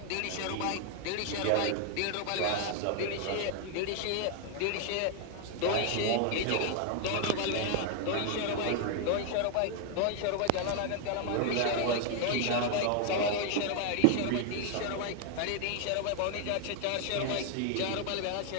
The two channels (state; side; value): different; both; correlation 0.00